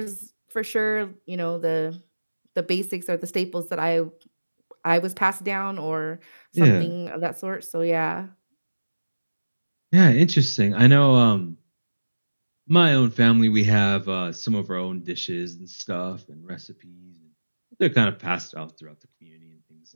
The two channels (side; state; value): both; inverted; correlation -1.00